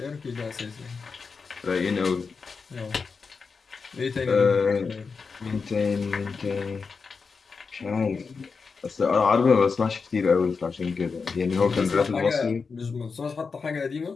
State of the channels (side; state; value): right; quieter; 5.0 dB